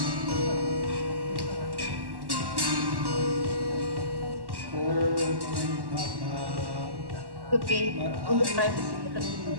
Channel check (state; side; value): late; left; 1.1 ms